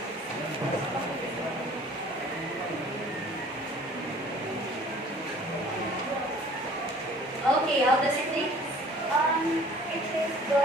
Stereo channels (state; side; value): normal; both; correlation 0.50